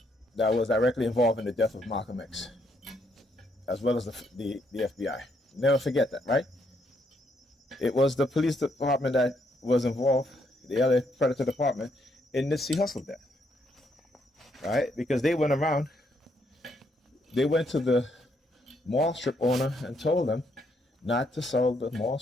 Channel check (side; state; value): both; normal; correlation 0.74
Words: that was directly involved in the death of Malcolm X, as well as the FBI. Never forget that, right? It was the police department that was involved, the other Predator department, in the Nipsey Hussle death. Right? Because they went around, they went to the mall strip owner and told them not to sell the mall